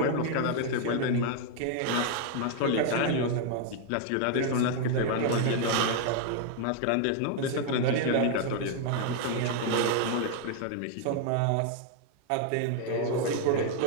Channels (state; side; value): different; both; correlation 0.00